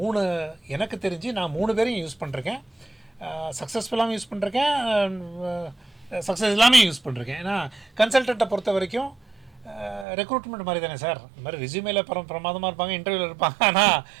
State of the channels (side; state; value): left; drops out; at 10.1 s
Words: எனக்கு தெரிஞ்சு நான் 3 பேரையும் யூஸ் பண்ணுறேன். சக்ஸஸ்ஃபுல்லாகவும் யூஸ் பண்ணுறேன், சக்ஸஸ் இல்லாமல் யூஸ் பண்ணுறேன். ஏன்னா கன்சல்டண்ட்டை பொறுத்த வரைக்கும் ரெக்ரூட்மெண்ட் மாதிரி தானே சார். இந்த மாதிரி ரெஸ்யூமேல பிரமாதமாக இருப்பாங்க, இன்டர்வியூவில் இருப்பாங்க, ஆனால்